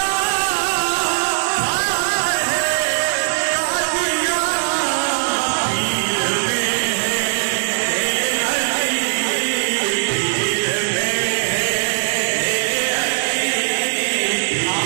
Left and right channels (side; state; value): left; silent; digital silence